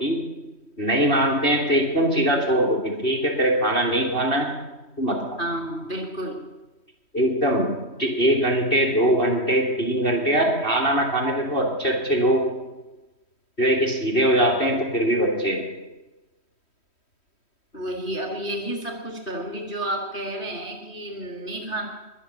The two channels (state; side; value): late; right; 3.1 ms